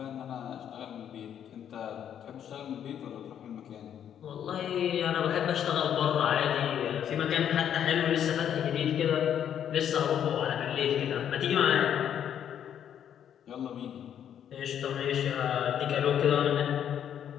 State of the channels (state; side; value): quieter; right; 9.4 dB